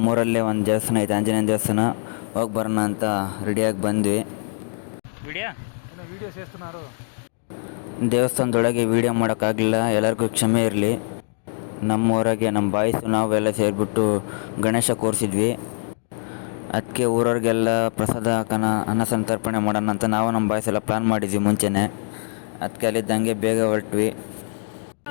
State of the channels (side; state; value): right; silent; 64 dB below the other